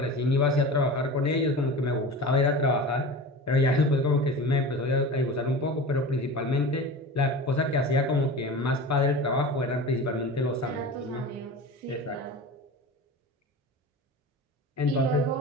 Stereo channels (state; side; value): normal; both; correlation 0.33